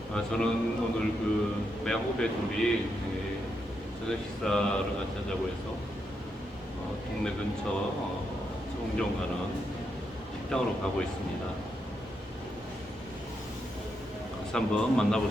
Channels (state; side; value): normal; both; correlation 0.82